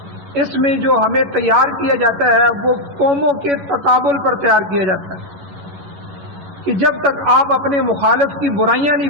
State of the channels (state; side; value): late; left; 11 ms